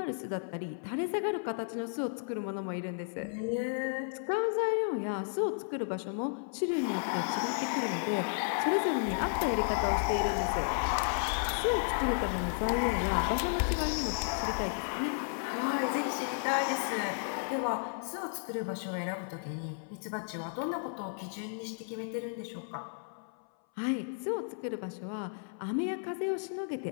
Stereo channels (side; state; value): right; silent; 56 dB below the other